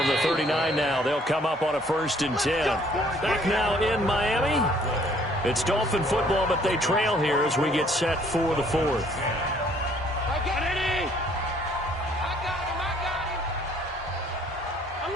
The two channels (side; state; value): both; normal; correlation 0.61